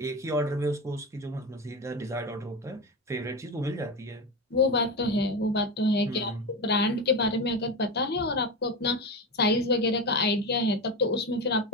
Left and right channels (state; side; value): normal; both; correlation 0.19